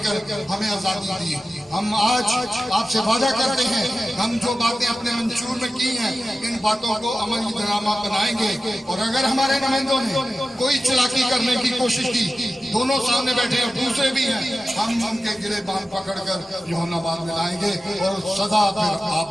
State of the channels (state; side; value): normal; both; correlation 0.94